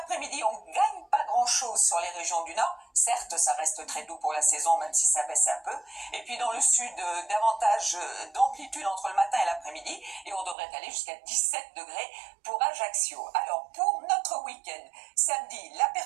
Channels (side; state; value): left; drops out; at 10.6 s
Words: on ne gagne pas grand-chose sur les régions du Nord. Certes, ça reste très doux pour la saison, même si ça baisse un peu. Et puis, dans le Sud, davantage d'amplitude entre le matin et l'après-midi. Et on devrait aller jusqu'à 17 degrés pour Ajaccio. Alors, pour notre week-end, samedi, la